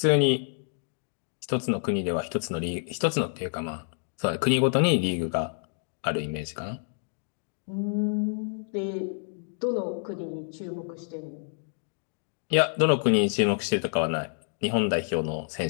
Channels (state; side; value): silent; right; 59 dB below the other